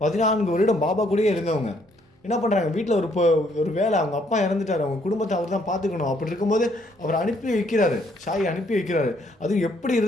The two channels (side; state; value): both; normal; correlation 0.68